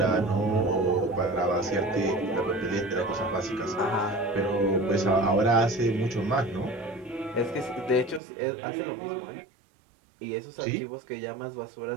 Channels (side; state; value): left; drops out; at 8.2 s